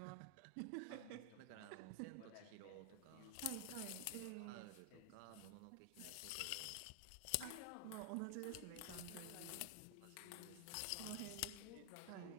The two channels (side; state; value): both; different; correlation 0.00